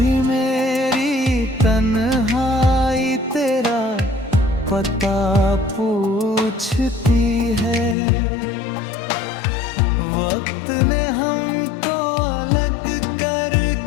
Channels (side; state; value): right; drops out; at 8.0 s